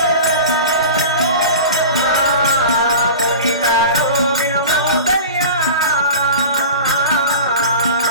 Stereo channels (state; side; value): inverted; both; correlation -0.35